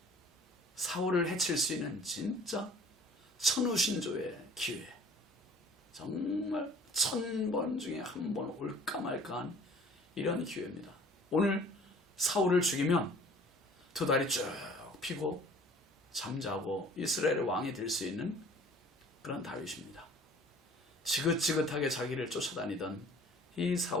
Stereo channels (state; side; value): normal; both; correlation 0.50